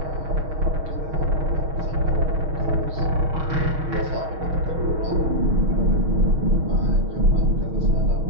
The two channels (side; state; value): left; late; 6.4 ms